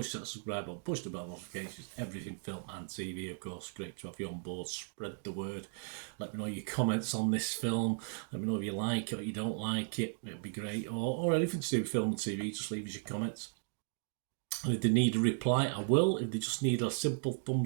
that subscribe button, push the bell notifications, everything film and TV, of course. Great to have you on board. Spread the word. Let me know your comments on this film. Let me know if you like it or you don't like it. It'd be great. Or anything to do with film and TV, just leave us your comments. If they need a reply, I will. If they just need a simple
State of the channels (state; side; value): silent; left; 54 dB below the other